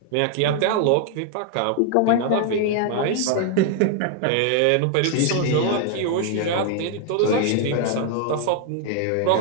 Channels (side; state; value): both; different; correlation 0.00